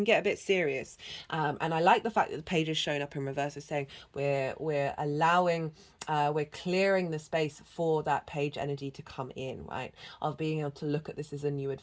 get a bit serious. And I like the fact that the page is showing up in reverse, is saying we're allowing, we're clearing the space for that page energy to come in, right? Of being able to look at this as a new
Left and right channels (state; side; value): identical; both; correlation 1.00